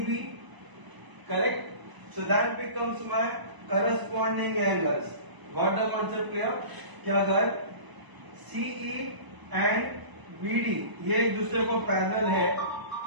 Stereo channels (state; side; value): late; left; 1.0 ms